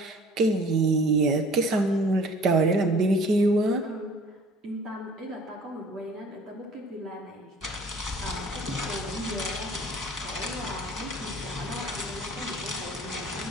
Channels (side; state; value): both; normal; correlation 0.50